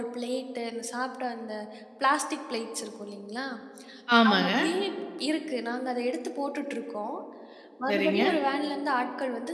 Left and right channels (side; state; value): both; identical; correlation 1.00